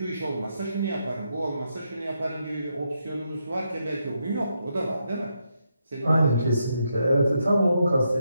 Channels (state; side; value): inverted; both; correlation -0.81